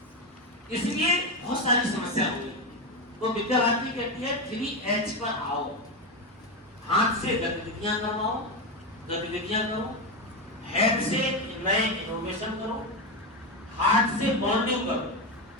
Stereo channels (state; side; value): normal; both; correlation 0.12